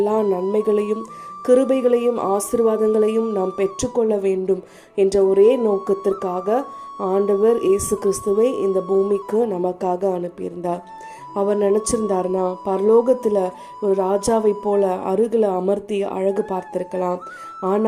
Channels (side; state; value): both; identical; correlation 1.00